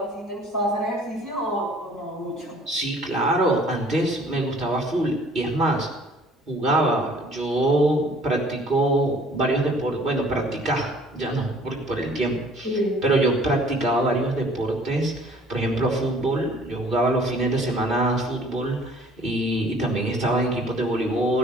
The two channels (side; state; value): both; normal; correlation 0.54